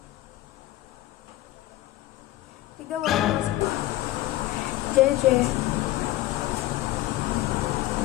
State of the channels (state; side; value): quieter; right; 16.0 dB